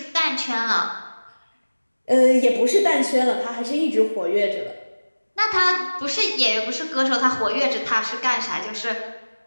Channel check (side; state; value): both; inverted; correlation -1.00